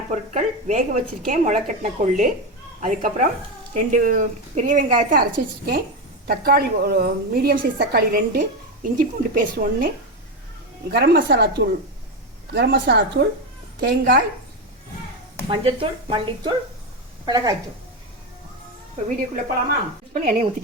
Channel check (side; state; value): both; normal; correlation 0.13